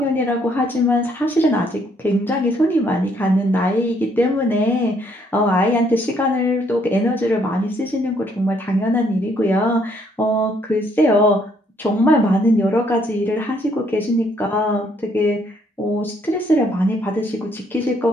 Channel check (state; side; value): normal; both; correlation 0.68